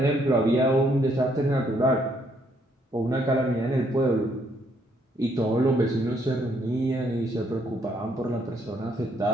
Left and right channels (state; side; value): normal; both; correlation 0.70